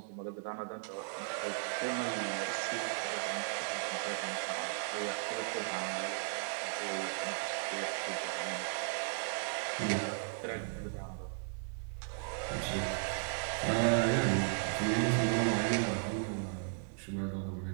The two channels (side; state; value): left; silent; 54 dB below the other